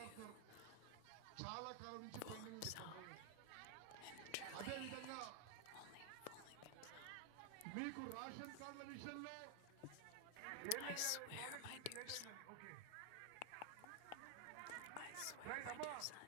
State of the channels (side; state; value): both; different; correlation 0.00